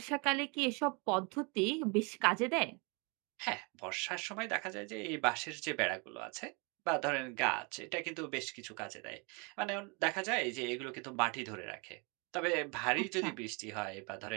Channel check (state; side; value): quieter; left; 31.3 dB